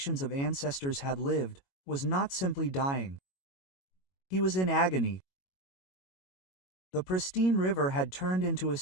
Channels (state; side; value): late; right; 22 ms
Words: of ancestors had lived, was not simply dying. He was in agony. The pristine river had turned into a